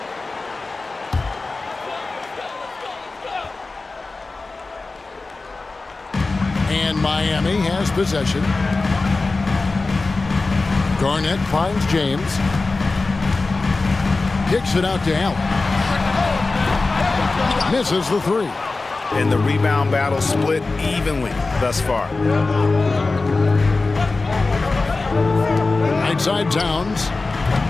And Miami has possession. Garnett finds James. Kicks it out to Allen. Misses the 3. And the rebound battle split evenly thus far. Right side Towns.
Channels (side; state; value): right; quieter; 3.6 dB